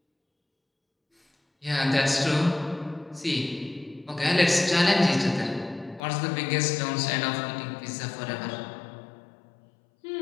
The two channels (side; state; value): right; drops out; at 6.0 s